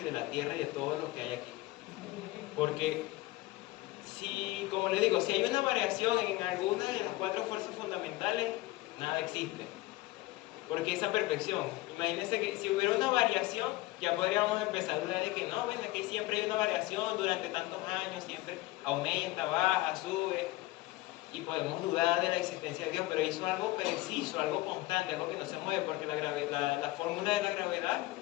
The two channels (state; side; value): quieter; right; 18.8 dB